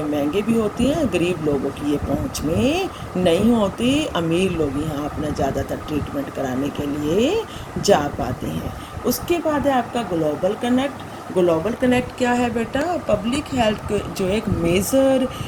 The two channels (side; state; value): both; identical; correlation 1.00